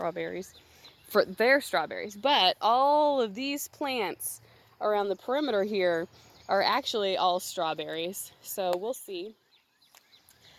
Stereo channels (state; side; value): identical; both; correlation 1.00